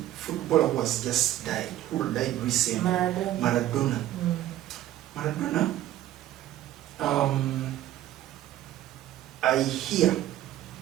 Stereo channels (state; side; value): quieter; left; 13.4 dB